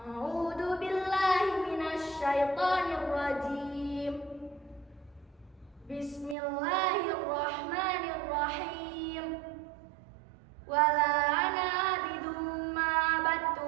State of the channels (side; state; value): left; drops out; at 6.4 s